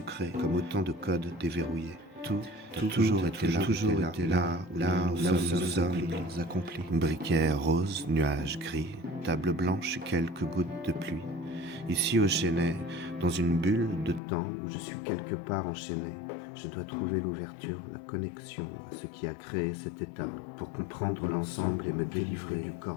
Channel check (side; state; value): right; drops out; at 14.2 s